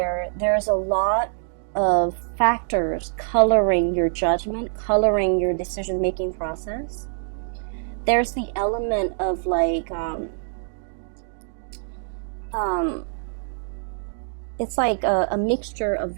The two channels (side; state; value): left; silent; digital silence